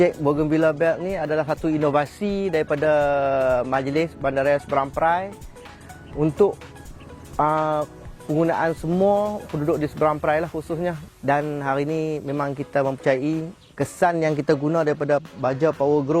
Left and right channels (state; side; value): identical; both; correlation 1.00